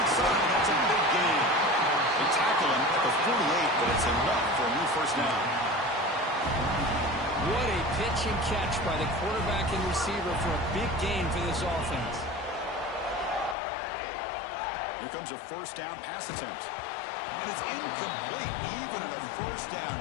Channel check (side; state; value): right; drops out; at 13.6 s